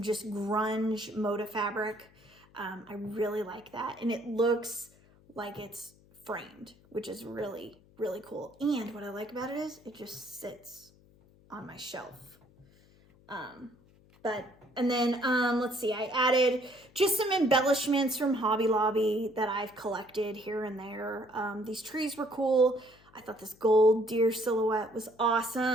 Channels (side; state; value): left; noise; hum, 28 dB below the sound